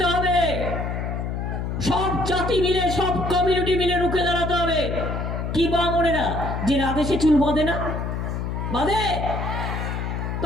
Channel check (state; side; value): noise; left; hum, 3 dB below the sound